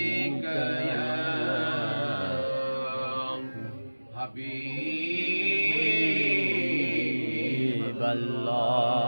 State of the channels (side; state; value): both; inverted; correlation -1.00